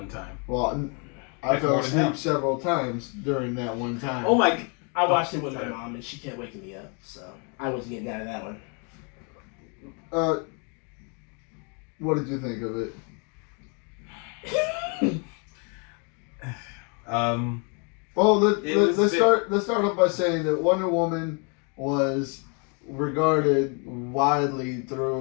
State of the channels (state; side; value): quieter; right; 36.4 dB